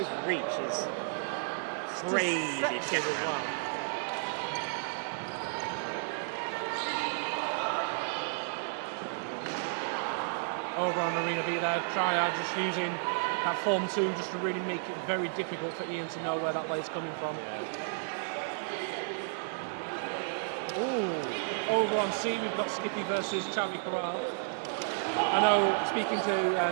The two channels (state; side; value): silent; left; digital silence